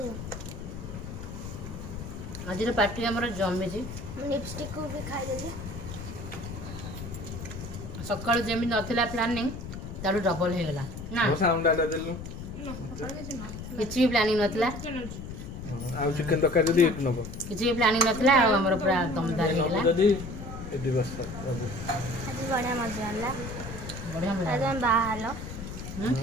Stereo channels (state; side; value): noise; left; rumble, 9 dB below the sound